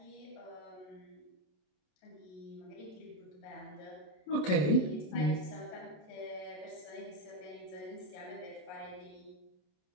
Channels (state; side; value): late; right; 27 ms